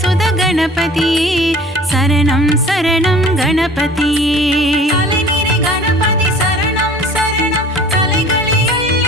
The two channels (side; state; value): both; normal; correlation 0.46